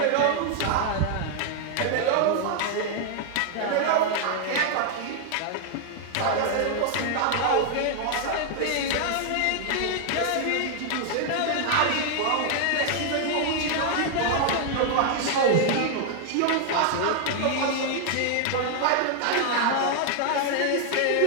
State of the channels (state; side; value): different; both; correlation 0.00